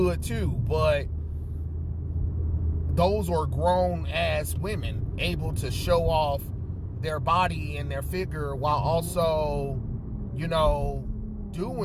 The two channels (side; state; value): both; identical; correlation 1.00